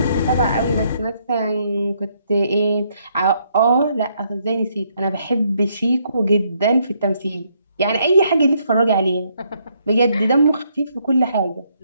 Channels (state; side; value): inverted; both; correlation -0.72